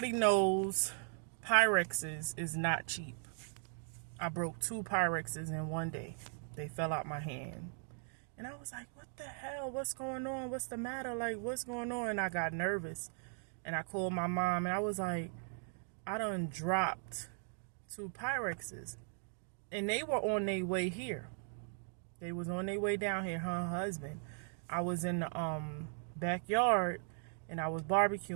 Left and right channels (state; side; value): silent; left; 52 dB below the other